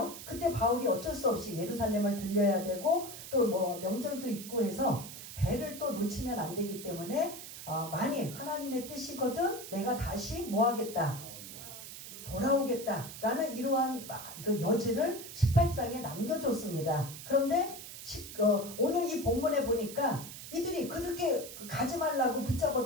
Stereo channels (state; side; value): noise; right; hiss, 12 dB below the sound